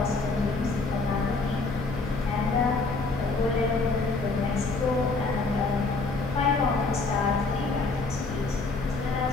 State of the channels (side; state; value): right; quieter; 3.7 dB